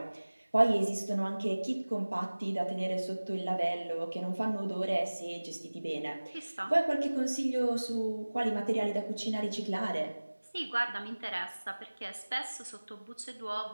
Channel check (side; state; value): both; inverted; correlation -1.00